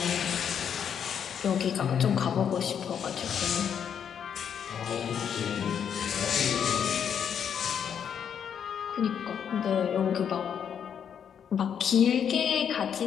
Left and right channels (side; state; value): right; quieter; 8.1 dB